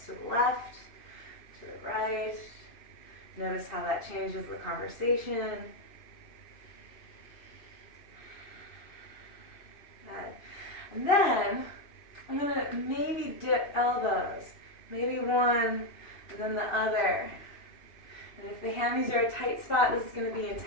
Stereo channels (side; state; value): right; late; 2.5 ms